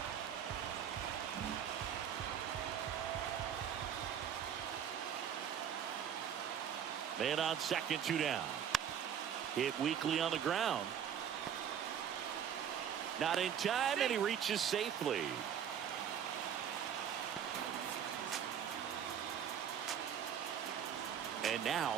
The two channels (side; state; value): left; quieter; 8.8 dB